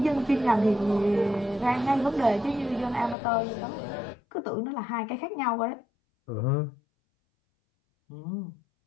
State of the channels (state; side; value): drops out; right; at 3.2 s